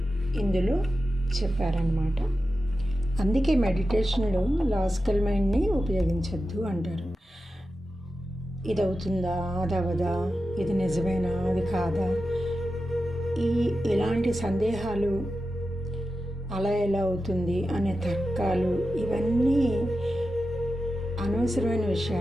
ఇందులో చెప్పారన్నమాట. అందుకే మెడిటేషన్లో లాజికల్ మైండ్ని ఉపయోగించద్దు అంటారు. ఇది అవుతుందా, అది అవదా, ఇది నిజమేనా, అది కాదా, ఇలాంటి సందేహాలు, అలా ఎలా అవుతుంది అనే తర్కాలు, ఇవన్నీ అనవసరమైన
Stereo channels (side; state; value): both; normal; correlation 0.92